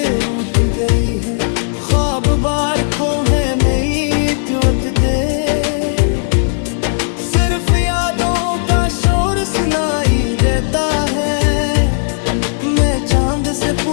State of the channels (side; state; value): right; silent; digital silence